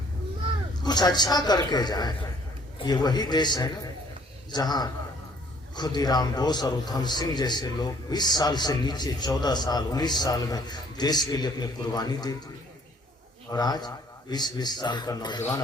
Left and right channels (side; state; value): both; normal; correlation 0.60